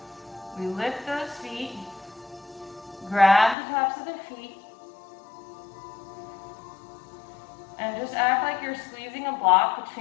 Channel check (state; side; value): drops out; right; at 3.6 s